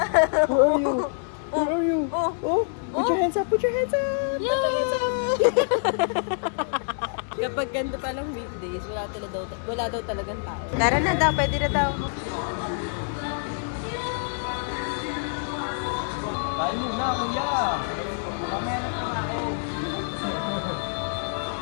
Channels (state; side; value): silent; right; digital silence